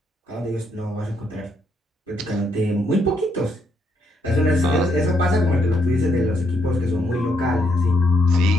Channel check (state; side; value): normal; both; correlation 0.75